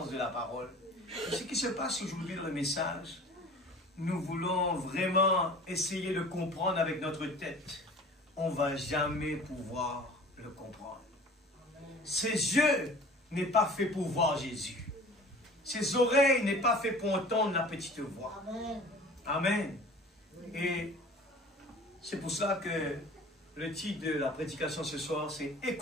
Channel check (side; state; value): both; normal; correlation 0.44